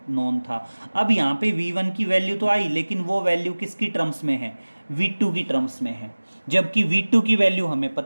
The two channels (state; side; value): inverted; both; correlation -1.00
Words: नोन था। अब यहाँ पे v1 की वैल्यू तो आई, लेकिन वो वैल्यू किसकी टर्म्स में है, v2 की टर्म्स में है, जबकि v2 की वैल्यू हमें